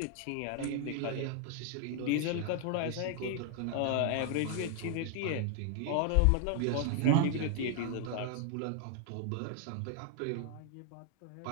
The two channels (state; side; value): different; both; correlation 0.00